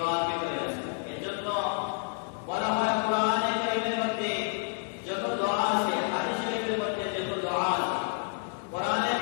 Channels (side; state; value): right; silent; 58 dB below the other